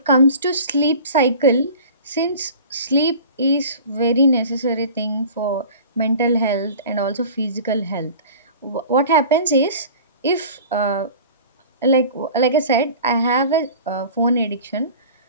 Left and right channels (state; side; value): inverted; both; correlation -0.41